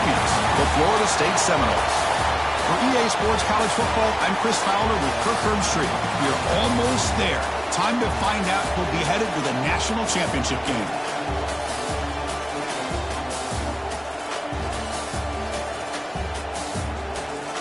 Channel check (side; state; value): both; identical; correlation 1.00